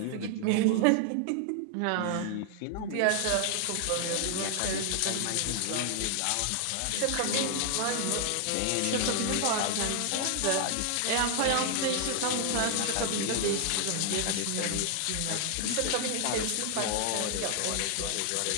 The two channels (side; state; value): both; different; correlation 0.00